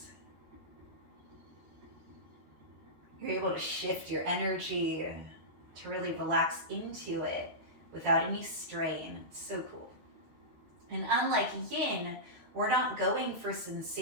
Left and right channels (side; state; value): left; late; 13 ms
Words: You're able to shift your energy to really relax into it without any strain. It's so cool. And unlike yin, we're not going for